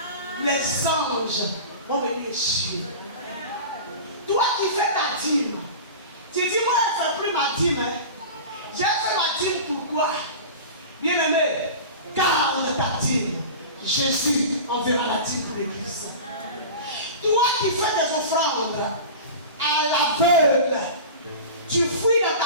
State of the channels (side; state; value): both; inverted; correlation -0.33